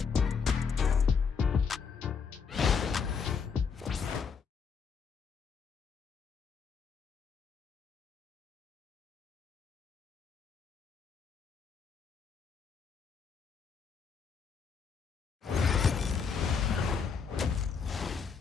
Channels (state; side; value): quieter; right; 6.0 dB